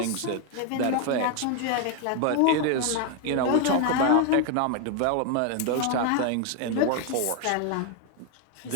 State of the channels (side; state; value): both; different; correlation 0.01